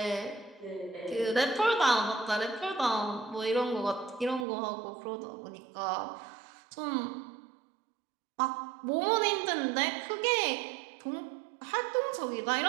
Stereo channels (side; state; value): left; drops out; at 4.5 s